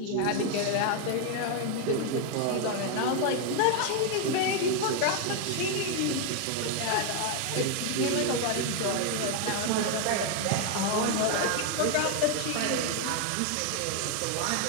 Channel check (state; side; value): different; both; correlation 0.01